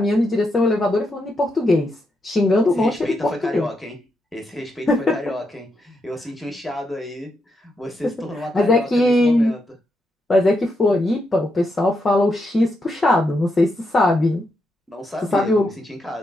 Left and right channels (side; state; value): both; normal; correlation 0.82